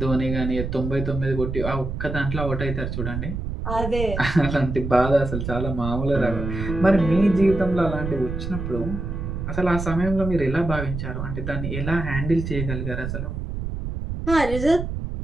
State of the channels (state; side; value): noise; right; rumble, 5 dB below the sound